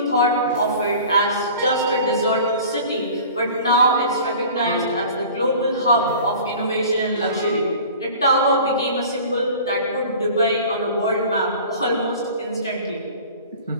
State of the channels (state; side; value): inverted; both; correlation -0.42